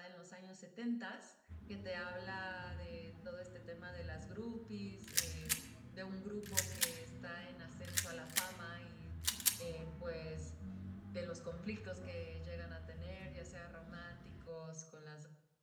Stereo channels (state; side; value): identical; both; correlation 1.00